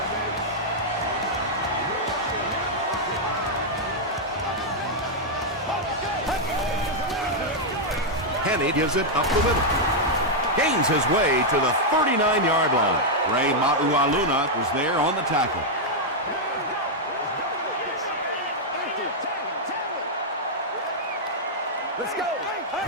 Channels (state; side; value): normal; both; correlation -0.03